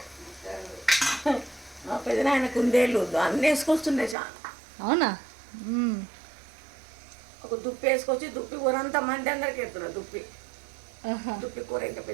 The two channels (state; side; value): drops out; left; at 4.2 s